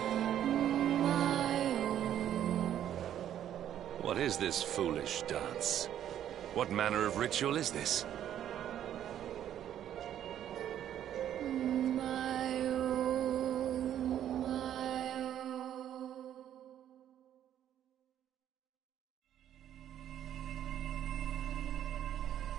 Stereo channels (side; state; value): left; quieter; 10.8 dB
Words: What is this foolish dance? What manner of ritual is this?